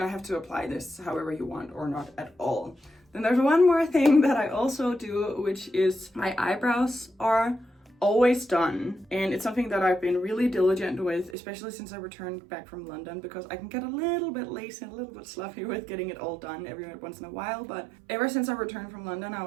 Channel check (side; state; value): left; drops out; at 11.4 s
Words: have to apply this however you want or not at all. Then there's one more thing that I also do, which is my eyebrows are always done, and it's something that I've been really diligent with, especially since I returned back from London, because I can get a little bit lazy and a little bit sloppy with getting it all done every once in a while. But ever since I returned from London, I